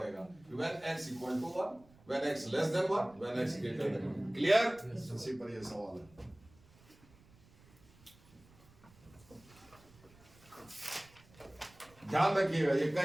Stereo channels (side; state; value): right; noise; rumble, 26 dB below the sound